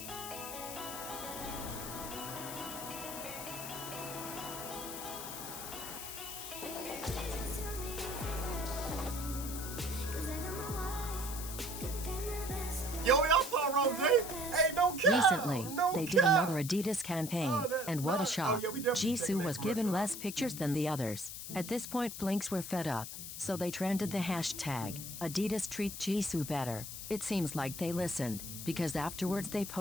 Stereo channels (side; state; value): left; noise; hiss, 8 dB below the sound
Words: Yo, y'all saw Rose? Hey, no cap! Recently, No they did cap! another Adidas campaign, and what a shock. yeah, we definitely Jisoo checked that was given commercial less pictures than the others. At this point, Blinks were fed up, so they trended the hashtag, Adidas treat Jisoo better. It seems like they listened, because afterwards they